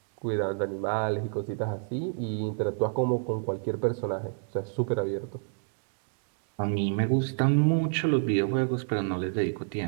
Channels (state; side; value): silent; left; digital silence